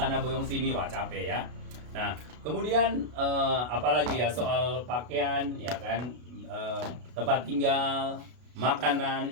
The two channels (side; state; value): left; late; 33 ms